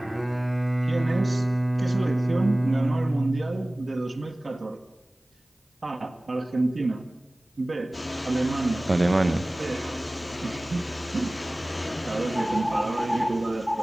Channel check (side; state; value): both; normal; correlation 0.98